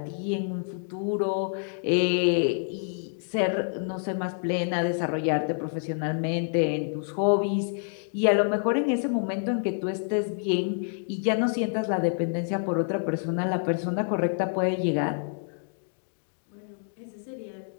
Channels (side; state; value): right; silent; digital silence